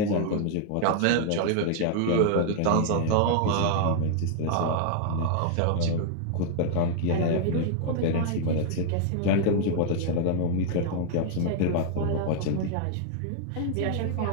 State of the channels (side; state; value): both; different; correlation -0.01